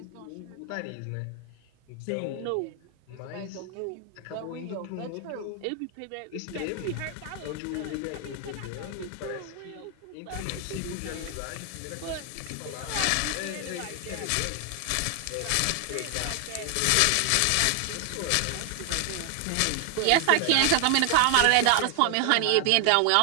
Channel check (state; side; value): different; both; correlation 0.00